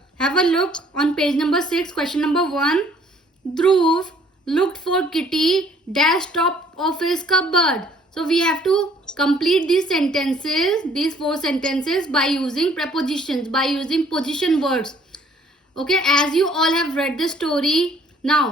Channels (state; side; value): normal; both; correlation 0.59